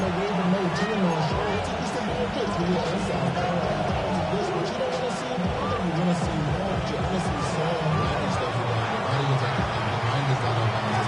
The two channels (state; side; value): identical; both; correlation 1.00